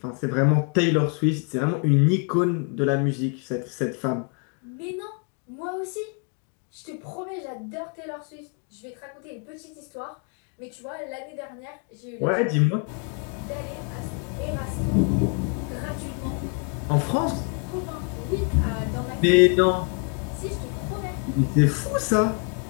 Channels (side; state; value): right; quieter; 38.9 dB